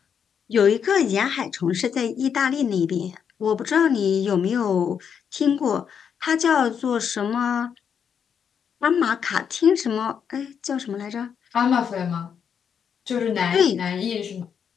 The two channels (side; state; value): right; quieter; 7.5 dB